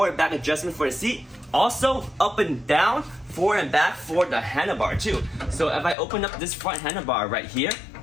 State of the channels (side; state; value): right; drops out; at 6.0 s